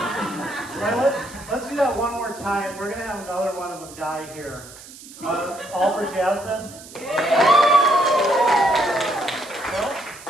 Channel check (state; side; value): noise; right; hiss, 18 dB below the sound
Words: Right, let's do that one more time. We're gonna have another one of them die here. All for Jasmine. Phil?